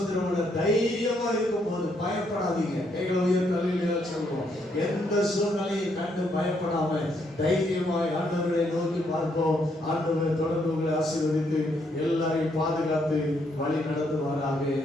தைரியமா இருக்கும் போது பயப்படாதீங்க. கைகளை உயர்த்தி அல்லேலூயா சொல்லுவோம். எந்த சூழ்நிலையை கண்டு பயப்படாம தைரியமாய் ஆண்டவரை நோக்கி பார்ப்போம். ஆண்டவர் தொடர்ந்து உங்களை ஆசீர்வதித்து எல்லாரையும் பாதுகாத்து வழி நடத்துவாராக.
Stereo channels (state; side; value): normal; both; correlation 0.73